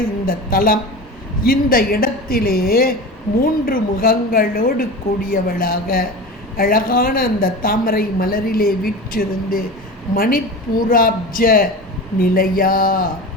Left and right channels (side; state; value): both; normal; correlation 0.30